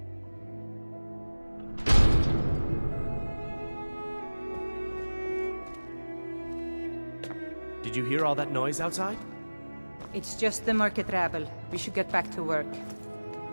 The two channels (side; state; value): both; inverted; correlation -1.00